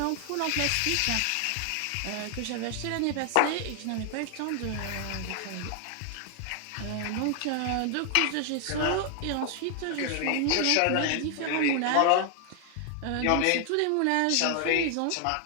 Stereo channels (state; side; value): different; both; correlation 0.00